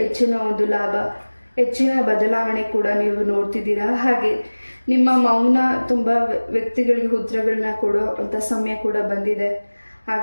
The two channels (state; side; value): inverted; both; correlation -1.00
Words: ಹೆಚ್ಚಿನ ಒಂದು ಲಾಭ, ಹೆಚ್ಚಿನ ಬದಲಾವಣೆ ಕೂಡ ನೀವು ನೋಡ್ತಿದ್ದೀರಾ. ಹಾಗೆ ನಿಮ್ಮ ಮೌನ ತುಂಬ ವ್ಯಕ್ತಿಗಳಿಗೆ ಉತ್ತರಗಳನ್ನ ಕೊಡೋ ಅಂಥ ಸಮಯ ಕೂಡ ಬಂದಿದೆ.